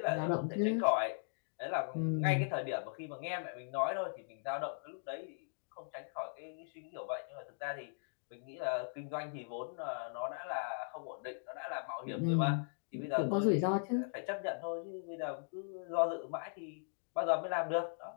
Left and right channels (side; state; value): right; silent; digital silence